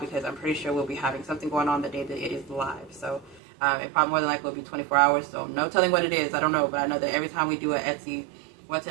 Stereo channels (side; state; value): left; drops out; at 3.4 s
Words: I'm pretty sure we'll be having something going on the day that it is live. So it probably more than likely will be 24 hours. So no telling what it is. I don't know, but I know that every time we do what's